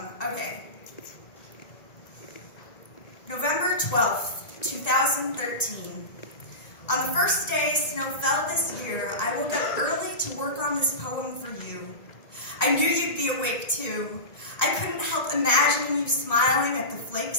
November 12th, 2013. On the first day snow fell this year, I woke up early to work on this poem for you. I knew you'd be awake too. I couldn't help imagining you smiling at the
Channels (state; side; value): late; right; 1.9 ms